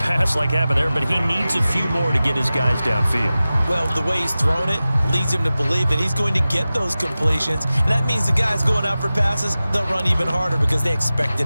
like happened there, but he needs a few more to get his guys downfield. Well, the way he's thrown it leads him to believe that he's going to get those completions, and that means the guys going out for passes, they'll run even harder because they expect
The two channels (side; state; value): both; inverted; correlation -0.96